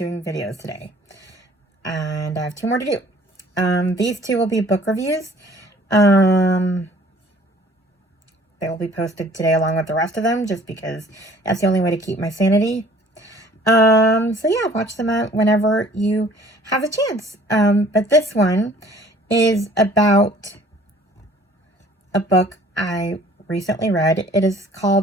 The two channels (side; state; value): both; normal; correlation 0.53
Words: videos today and I have 2 more to do. These 2 will be book reviews. They will be posted today along with the rest of them just because that's the only way to keep my sanity. So yeah, watch them out whenever you have a chance. But this one is about a book I recently read. It is